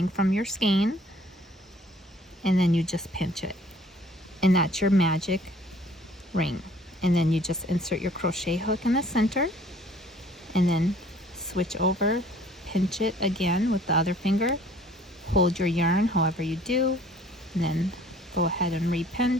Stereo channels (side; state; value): both; normal; correlation 0.55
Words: from your skein, and then you just pinch it, and that's your magic ring. And then you just insert your crochet hook in the center, and then switch over, pinch it again with the other finger, hold your yarn however you do, and then go ahead and